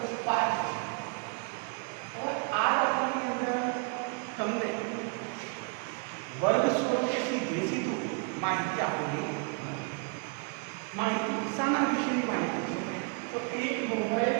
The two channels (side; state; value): left; quieter; 35.6 dB